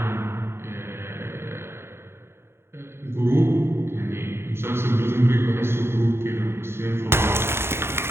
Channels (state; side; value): late; left; 0.12 ms